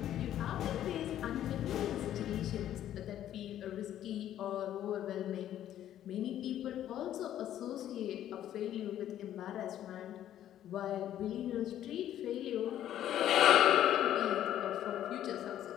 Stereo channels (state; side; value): quieter; right; 11.6 dB